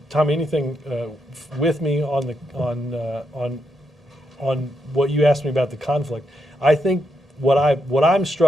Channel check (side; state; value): both; normal; correlation 0.81